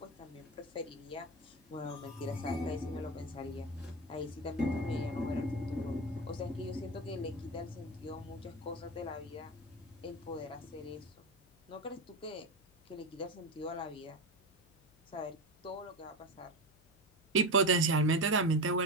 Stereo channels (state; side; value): noise; left; hum, 29 dB below the sound